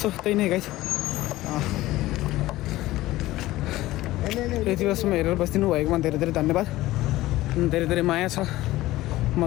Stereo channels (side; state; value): right; quieter; 16.9 dB